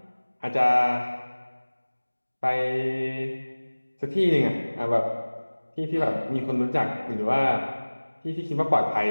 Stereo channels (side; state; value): both; inverted; correlation -1.00